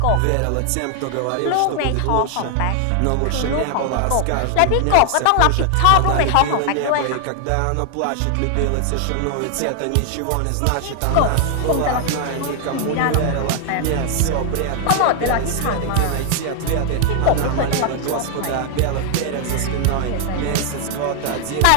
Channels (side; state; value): both; different; correlation 0.00